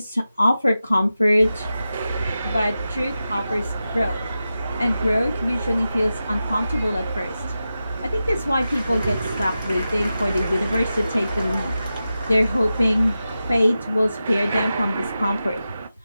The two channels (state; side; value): inverted; both; correlation -0.92